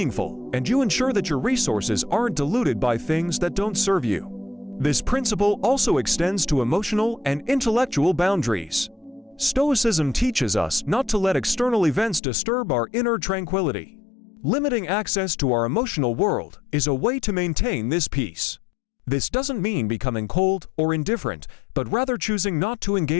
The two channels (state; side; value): drops out; right; at 12.2 s